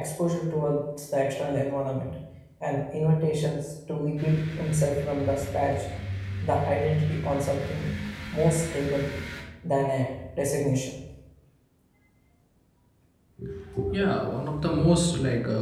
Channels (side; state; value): both; identical; correlation 1.00